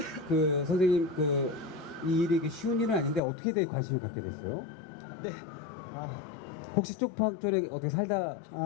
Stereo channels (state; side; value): drops out; right; at 3.2 s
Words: 그 선생님 이 일이 쉬운 일은 아닌데 어떻게 되게 관심을 갖게 됐어요? 네. 혹시 쪽방 쪽에 어떻게 살다